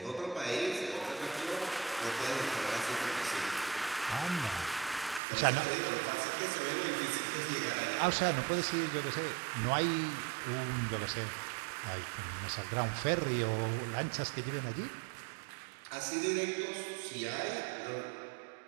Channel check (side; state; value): left; drops out; at 5.2 s